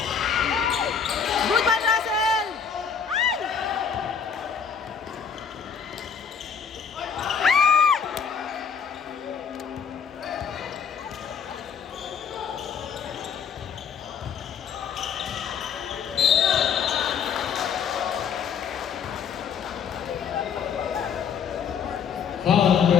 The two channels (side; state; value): right; quieter; 6.8 dB